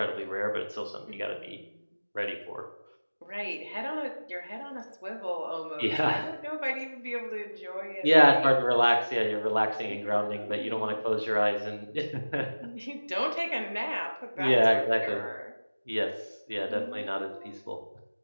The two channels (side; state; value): both; inverted; correlation -1.00